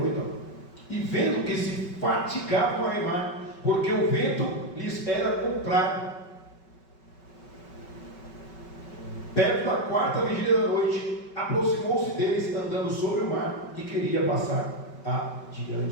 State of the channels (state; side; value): late; right; 5.3 ms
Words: E vendo que se fatigavam a remar, porque o vento lhes era contrário. Perto da 4ª vigília da noite, aproximou-se deles andando sobre o mar e queria passar